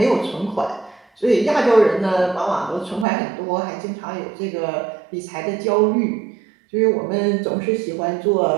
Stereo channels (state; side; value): drops out; left; at 3.1 s